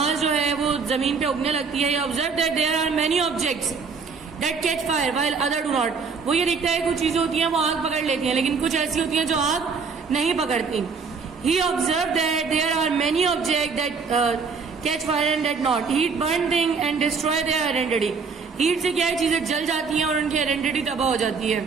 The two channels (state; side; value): quieter; left; 5.2 dB